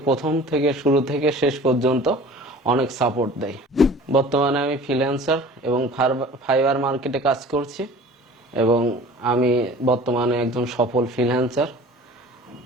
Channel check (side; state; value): both; normal; correlation 0.44